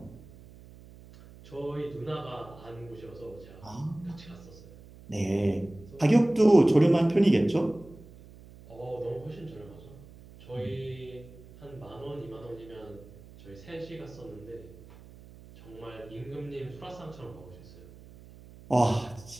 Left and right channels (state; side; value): noise; right; hum, 20 dB below the sound